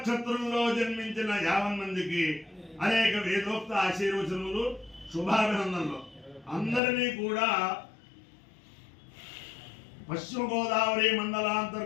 జన్మించిన 50 మందికి అనేక వేదోక్త ఆశీర్వచనములు శుభాభినందనలు అందరినీ కూడా పశ్చిమ గోదావరి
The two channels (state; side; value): drops out; right; at 6.8 s